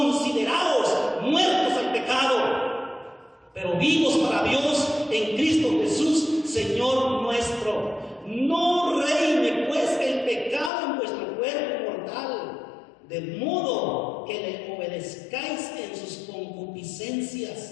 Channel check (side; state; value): right; drops out; at 10.7 s